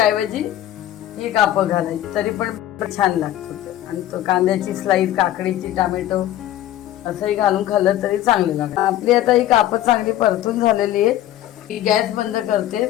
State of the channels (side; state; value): right; quieter; 13.1 dB